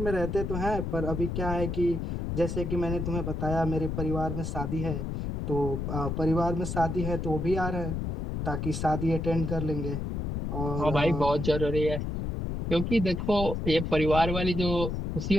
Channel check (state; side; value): noise; left; rumble, 3 dB below the sound